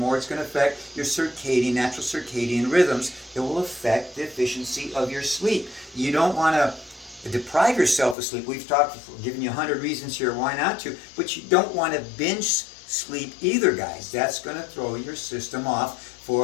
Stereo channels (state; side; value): drops out; right; at 8.2 s